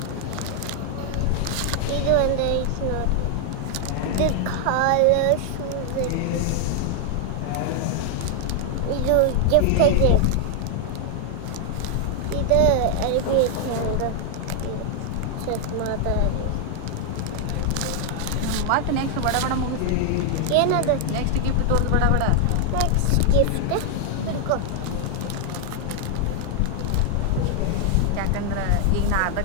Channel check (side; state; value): both; different; correlation 0.00